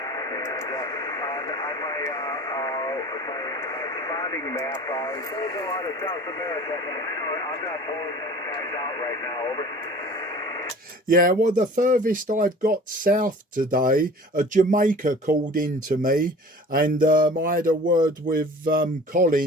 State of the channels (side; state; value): both; normal; correlation 0.44